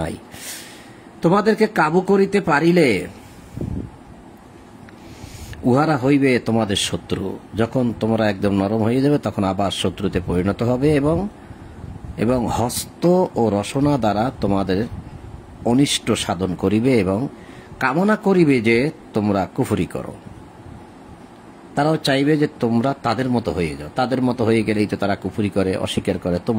তোমাদেরকে কাবু করিতে পারিলে উহারা হইবে তোমাদের শত্রু। যখন তোমরা একদম নরম হয়ে যাবে তখন আবার শত্রুতে পরিণত হবে এবং হস্ত ও রসনা দ্বারা তোমাদের অনিষ্ট সাধন করিবে এবং কামনা করিবে যে তোমরা কুফরি করো। তারাও চাইবে যে তোমরা তাদের মতো হয়ে যাও। তাদের মতো হয়ে গেলেই তো তারা কুফরি করে, অস্বীকার করে,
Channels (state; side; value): identical; both; correlation 1.00